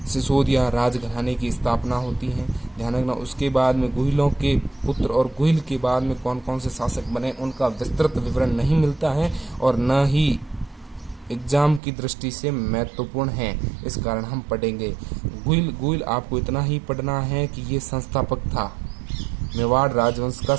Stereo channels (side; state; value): left; drops out; at 11.8 s